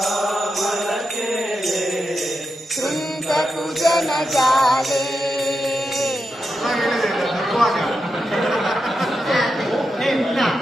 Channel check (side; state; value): both; normal; correlation 0.87